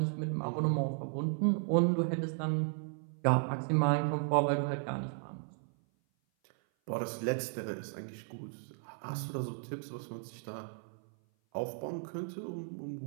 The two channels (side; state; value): left; silent; 54 dB below the other